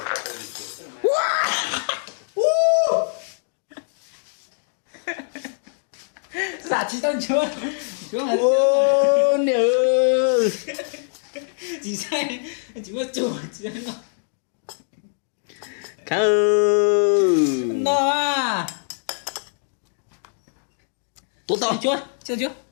giả chỉ tao chưa Nhớ. chỉ sai chỉ có chủ chỉ nó Khâu. nó à tụt to chưa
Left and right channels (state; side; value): silent; right; digital silence